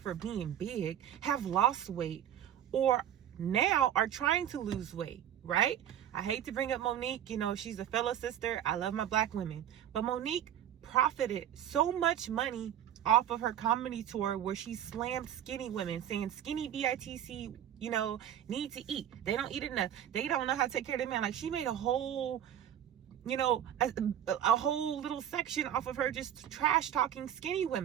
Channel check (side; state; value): left; quieter; 10.5 dB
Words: being big have lost weight or now are trying to lose weight, right? I hate to bring up Monique, you know, she's a fellow sister. I love my black women. But Monique profited so much money off of her comedy tour where she slammed skinny women, saying skinny BITC, you know, need to eat. They don't eat enough. They don't know how to take care of their man. Like, she made a whole, you know, a whole little section off of her just trash talking skinny